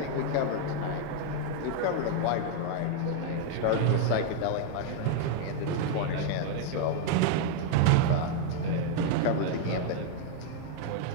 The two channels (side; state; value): both; different; correlation 0.00